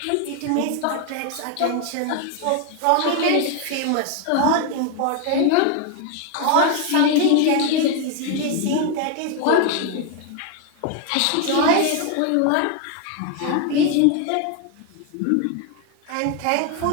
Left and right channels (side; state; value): both; different; correlation 0.01